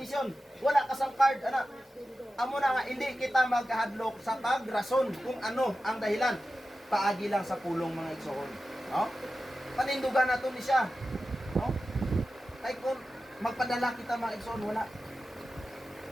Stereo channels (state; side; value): normal; both; correlation 0.93